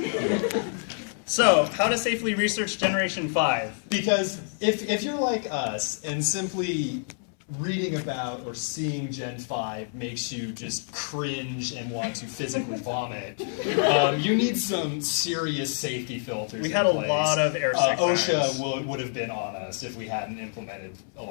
So, how to safely research Generation 5? Because if you're like us and simply reading about or seeing Gen 5 makes you just cringe and want to physically vomit, you need some serious safety filters. We had a lot of airsick OSHA would have been on us if we hadn't implemented a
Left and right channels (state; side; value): silent; right; 60 dB below the other